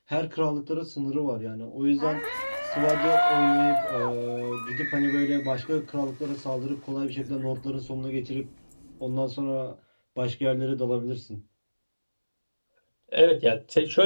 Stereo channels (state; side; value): inverted; both; correlation -1.00